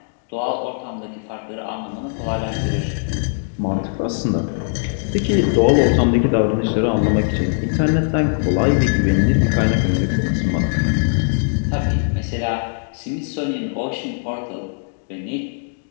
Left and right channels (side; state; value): right; silent; digital silence